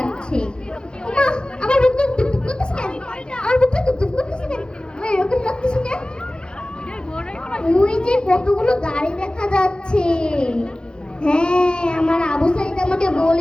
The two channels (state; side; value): late; right; 0.049 ms